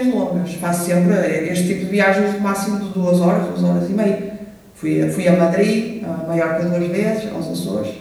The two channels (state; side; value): identical; both; correlation 1.00